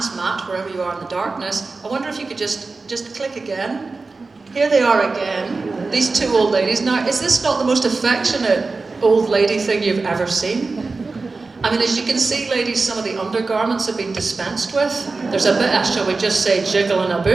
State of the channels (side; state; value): left; quieter; 3.9 dB